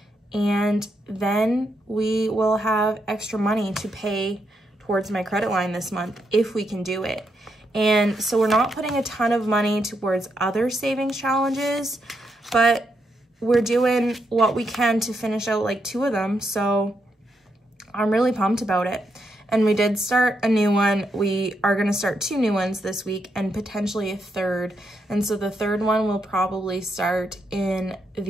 And then we will have extra money to pay towards my credit line this month if we can do it. And so we're not putting a ton of money towards other savings challenges, but we're doing what we can to finish out like 2 of them. So I'm really pumped about it. And we did start a new one. We are gonna start 2 new ones this week and potentially a 3rd. And so the 3rd one will probably start in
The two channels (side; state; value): both; normal; correlation 0.80